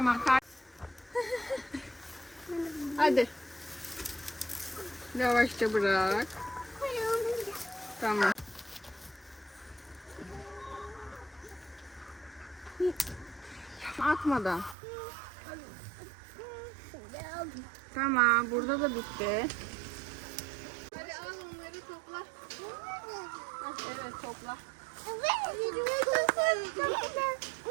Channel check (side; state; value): left; drops out; at 14.8 s